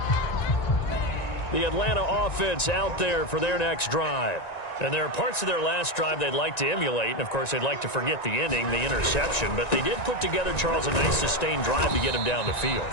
The Atlanta offense out there for their next drive. And there are parts of their last drive they'd like to emulate. And, of course, they'd like to forget the ending, the interception. But they did put together, Charles, a nice sustained drive to get him down the field.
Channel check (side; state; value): right; late; 1.9 ms